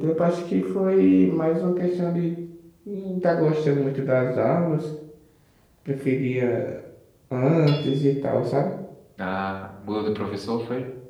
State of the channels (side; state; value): both; identical; correlation 1.00